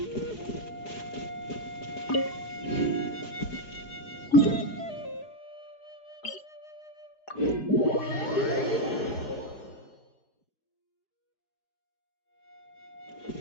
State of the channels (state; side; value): late; right; 4.8 ms